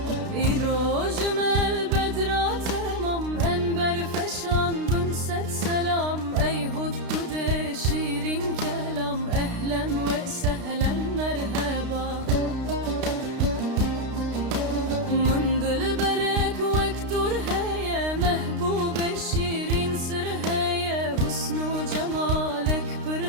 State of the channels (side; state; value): left; late; 32 ms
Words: İrojmel bedra temam enber feşan bin set selam Ey huddude şirin kelam ehlen ve sehlen merhaba Min dil berek vektur heye mehbube şirin sır heye Husnu cemalek pır